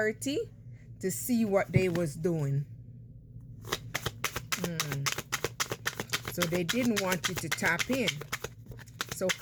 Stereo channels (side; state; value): both; identical; correlation 1.00